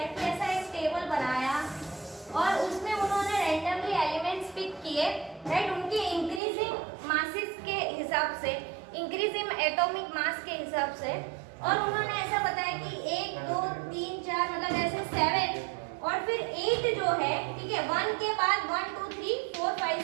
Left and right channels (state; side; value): drops out; left; at 6.4 s